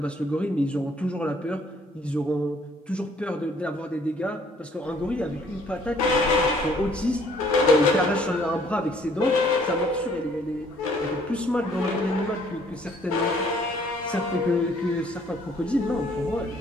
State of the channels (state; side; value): normal; both; correlation 0.61